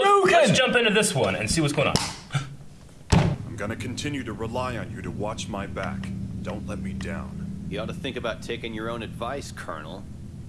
let's jump into this one and see what's going on. I'm gonna continue to rely on you to watch my back. Don't let me down. You ought to think about taking your own advice, Colonel.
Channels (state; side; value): identical; both; correlation 1.00